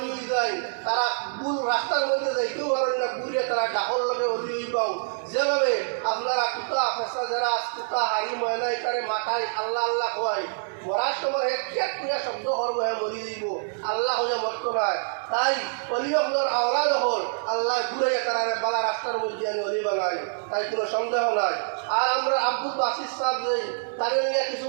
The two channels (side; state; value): left; silent; digital silence